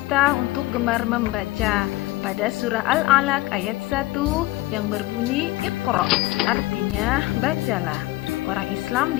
untuk gemar membaca. Pada surah Al-Alaq ayat 1 yang berbunyi Iqra, artinya bacalah. Orang Islam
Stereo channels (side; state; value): right; quieter; 18.8 dB